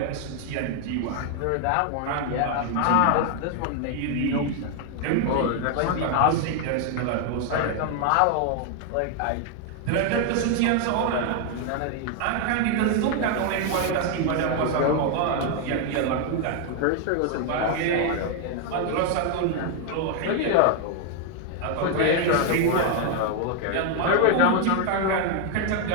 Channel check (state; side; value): different; both; correlation 0.00